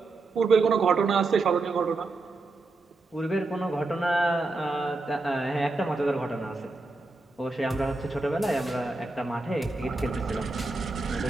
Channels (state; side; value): quieter; left; 3.3 dB